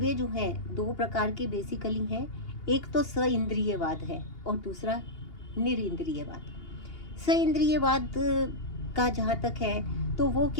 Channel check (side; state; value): right; late; 2.8 ms